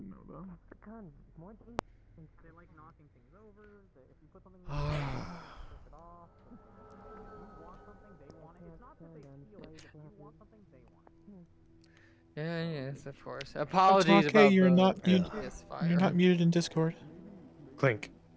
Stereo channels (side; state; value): both; identical; correlation 1.00